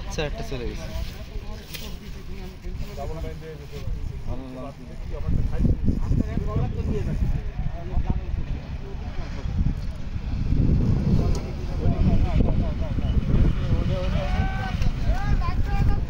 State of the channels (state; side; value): identical; both; correlation 1.00